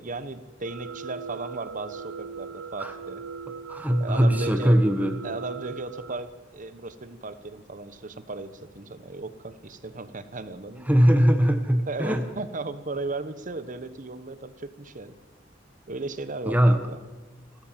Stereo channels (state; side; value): normal; both; correlation 0.85